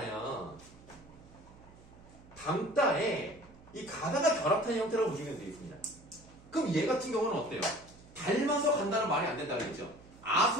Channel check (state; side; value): noise; right; hum, 23 dB below the sound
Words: 담다에 이 가다가 결합한 형태라고 보시면 되겠습니다. 그럼 얘 같은 경우는 어때요? 닮아서 간다는 말이 안 된다고 했죠.